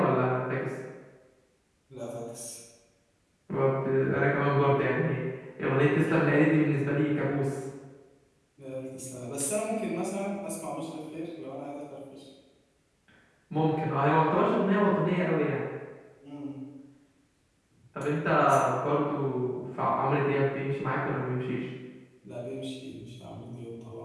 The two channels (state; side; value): identical; both; correlation 1.00